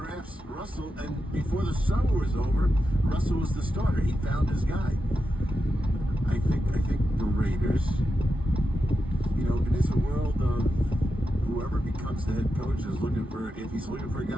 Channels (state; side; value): normal; both; correlation 0.89